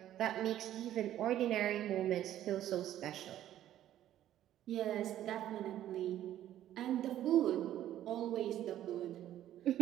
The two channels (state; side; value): quieter; left; 12.3 dB